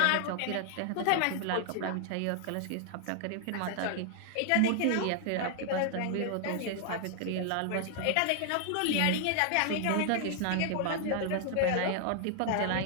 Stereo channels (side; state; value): both; different; correlation 0.00